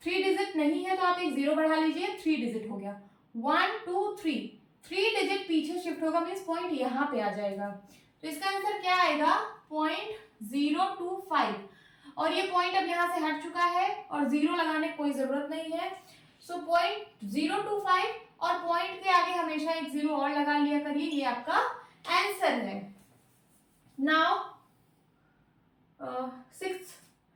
3 डिजिट नहीं है तो आप एक 0 बढ़ा लीजिए, 3 डिजिट हो गया। 1 2 3, 3 डिजिट पीछे शिफ्ट होगा, मींस पॉइंट यहाँ पे आ जाएगा। तो इसका आंसर क्या आएगा? 0.025। और ये पॉइंट अब यहाँ से हट चुका है और 0 लगाने की कोई जरूरत नहीं है। सो 0.025 और पॉइंट के आगे हमेशा एक 0 और लगा लिया करिए, ये आपका आंसर है। Now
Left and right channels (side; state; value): both; identical; correlation 1.00